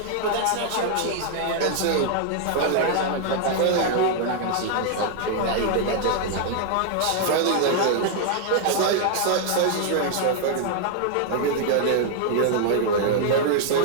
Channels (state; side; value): different; both; correlation -0.01